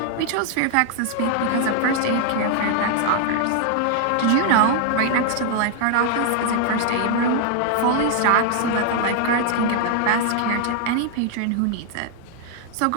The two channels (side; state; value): both; different; correlation 0.00